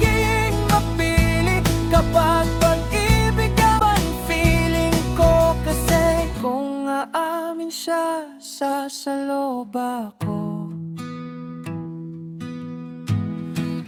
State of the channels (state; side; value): identical; both; correlation 1.00